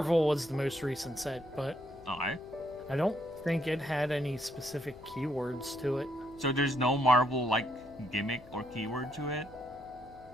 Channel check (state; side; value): noise; left; hum, 22 dB below the sound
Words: was the most recent set, but I don't think it had any specific keywords to it. So there's no Marvel like gimmick or keyword to it?